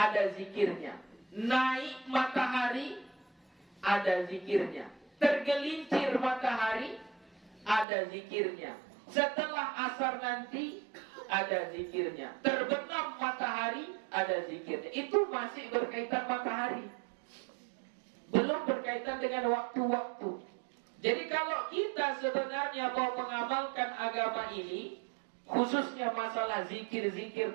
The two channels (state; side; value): drops out; left; at 7.9 s